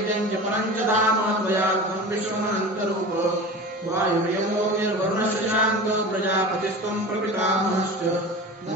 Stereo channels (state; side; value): normal; both; correlation 0.33